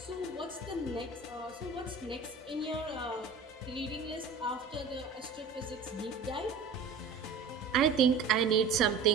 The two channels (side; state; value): left; quieter; 4.7 dB